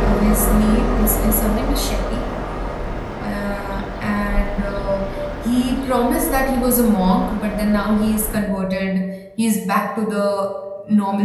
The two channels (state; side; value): identical; both; correlation 1.00